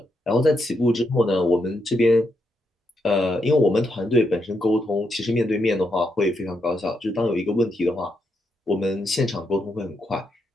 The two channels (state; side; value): normal; both; correlation 0.81